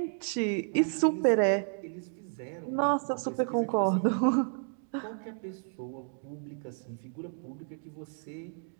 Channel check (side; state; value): left; silent; 57 dB below the other